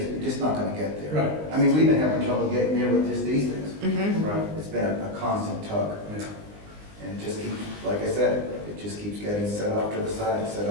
just not gonna get there. Right. I mean, we've been having trouble getting there with just these things. Mhm. Right. It's been a constant tug. Yeah. And it just keeps, like I said, it just keeps getting set off to the side, set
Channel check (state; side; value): late; left; 19 ms